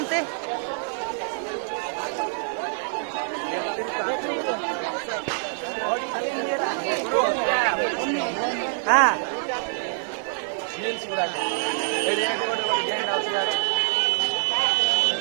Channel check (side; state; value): left; silent; 61 dB below the other